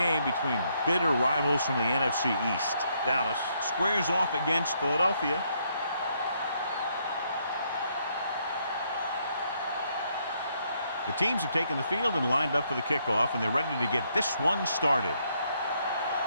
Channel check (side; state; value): both; inverted; correlation -0.73